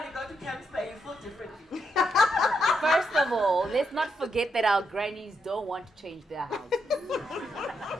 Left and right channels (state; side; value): normal; both; correlation 0.80